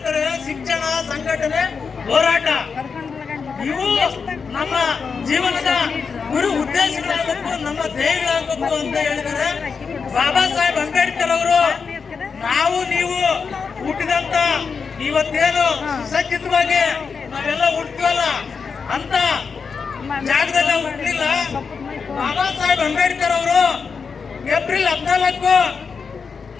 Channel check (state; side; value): quieter; right; 5.5 dB